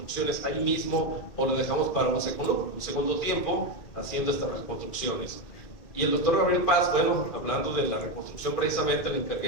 ahí mismo o lo dejamos para un segundo tiempo haciendo estas reconstrucciones. Y el doctor Gabriel Paz, bueno, hablando de la reconstrucción precisamente, le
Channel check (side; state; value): right; late; 2.2 ms